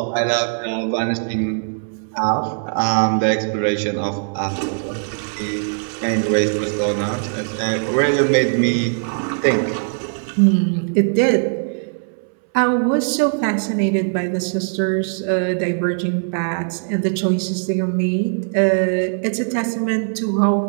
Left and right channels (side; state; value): left; silent; 66 dB below the other